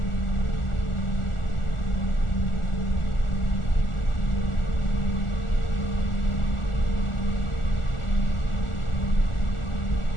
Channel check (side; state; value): right; late; 1.4 ms